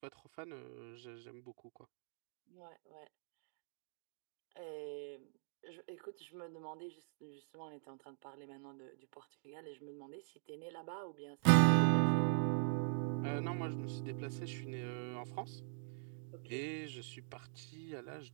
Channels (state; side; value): silent; left; digital silence